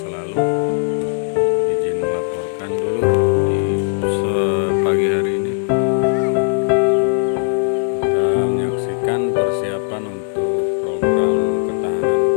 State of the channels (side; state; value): right; silent; digital silence